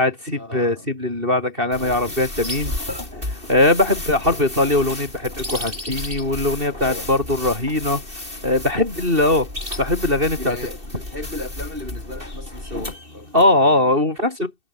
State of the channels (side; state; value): left; late; 2.7 ms